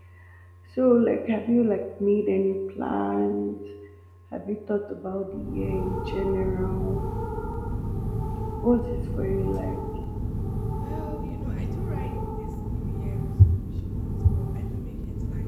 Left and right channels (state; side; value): identical; both; correlation 1.00